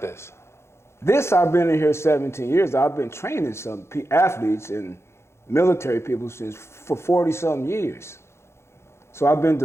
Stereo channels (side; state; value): right; late; 0.13 ms